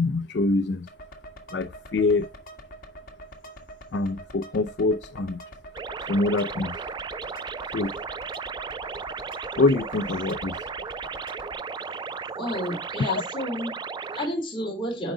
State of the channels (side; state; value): both; normal; correlation 0.35